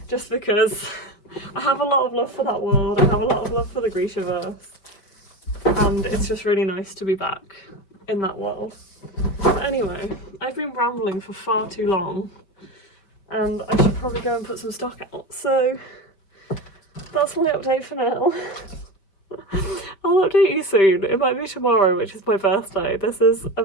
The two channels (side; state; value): right; late; 5.2 ms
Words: just because I have a lot of love for that world. I have a lot of love for the Grishaverse, and it's just really nice to be back in that world. But anyway, I've been rambling for far too long, and I should probably go and put some stock out. So that's my update for now. I'll update you soon. It might be tomorrow, which is my birthday. This is a